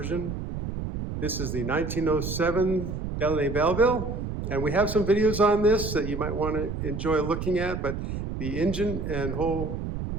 This is the 1907 Delaunay Belleville, and we have some videos on this that you might want to enjoy looking at, but the engine and the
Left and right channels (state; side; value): noise; right; rumble, 5 dB below the sound